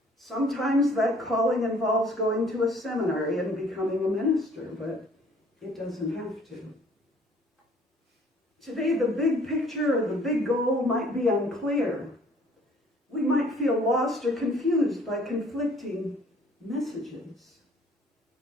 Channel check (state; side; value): normal; both; correlation 0.56